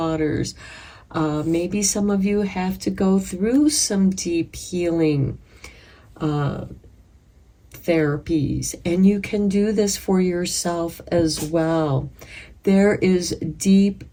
Maybe some of you have to go through some deep healing therapies, and you can do this for yourself as well. There is deep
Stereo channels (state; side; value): identical; both; correlation 1.00